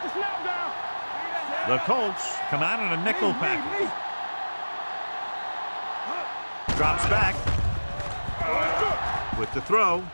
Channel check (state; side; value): inverted; both; correlation -1.00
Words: snap down. The Colts come out in a nickel package. Drops back. With the throw.